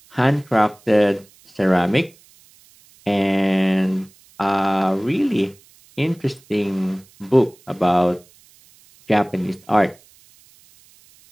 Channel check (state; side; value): noise; right; hiss, 29 dB below the sound